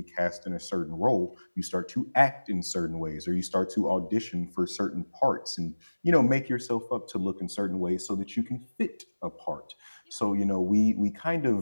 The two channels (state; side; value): inverted; both; correlation -1.00